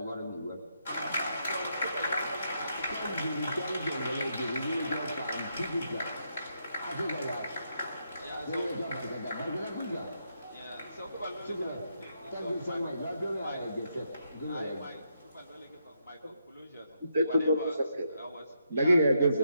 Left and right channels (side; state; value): both; inverted; correlation -0.79